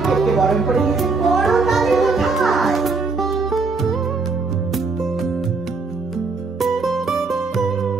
বরণ করে নিয়েছেন বড় তাদের কোথায়।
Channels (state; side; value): quieter; left; 4.2 dB